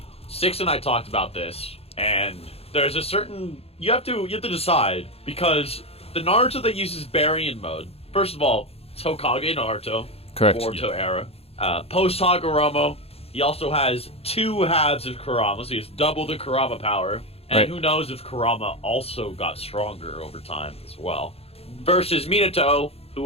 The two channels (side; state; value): right; late; 0.29 ms